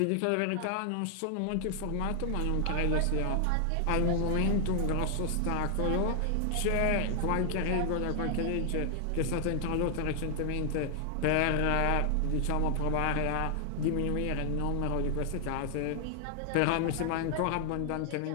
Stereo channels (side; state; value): both; different; correlation 0.00